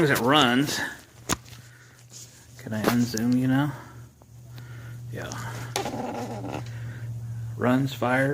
as it runs, can I unzoom you now? Yeah. Runs,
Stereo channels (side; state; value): both; identical; correlation 1.00